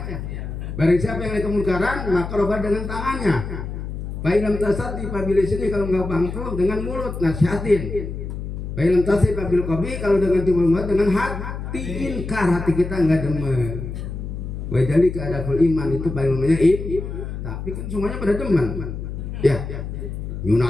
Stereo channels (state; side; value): noise; left; hum, 7 dB below the sound